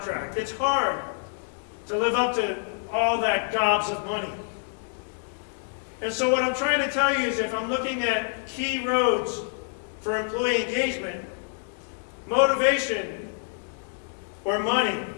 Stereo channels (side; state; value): right; silent; 60 dB below the other